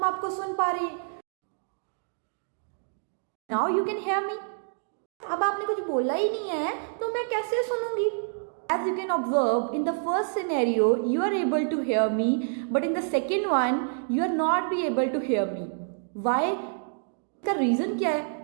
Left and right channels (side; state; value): left; silent; digital silence